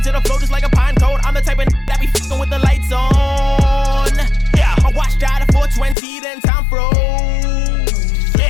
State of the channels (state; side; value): drops out; right; at 6.0 s